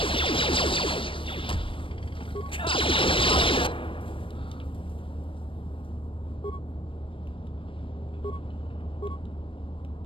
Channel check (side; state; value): right; late; 0.25 ms